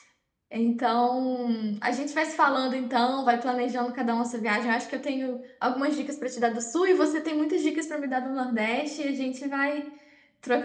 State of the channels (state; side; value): identical; both; correlation 1.00